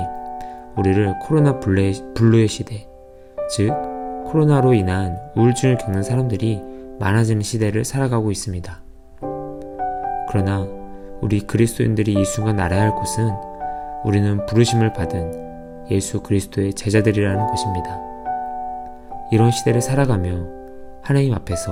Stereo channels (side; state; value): both; identical; correlation 1.00